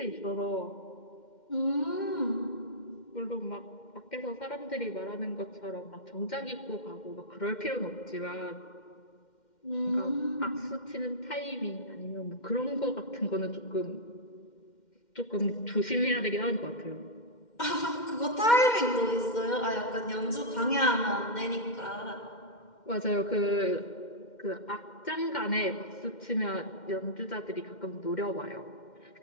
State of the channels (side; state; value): right; late; 2.1 ms